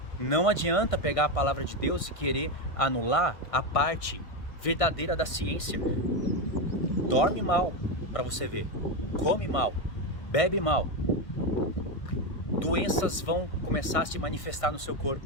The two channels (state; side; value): late; right; 1.6 ms